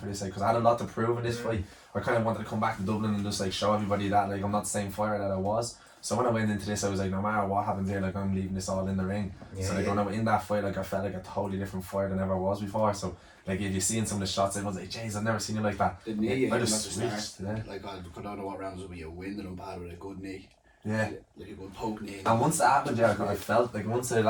this, like, because I had a lot to prove in this fight. I kind of wanted to come back to Dublin and just like show everybody that like I'm not the same fighter that I was. So when I went into this, I was like, no matter what happens here, like I'm leaving this all in the ring. So like when I went in that fight, like I felt like a totally different fighter than I ever was before. So like if you seen some of the shots, I was like, jeez, I've never seen you like that. The knee, I just switched. Yeah. Like I don't know what rounds will be a win and bad with a good knee. Yeah. Like a good poke knee. And once that happened, yeah, I felt like once I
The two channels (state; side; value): identical; both; correlation 1.00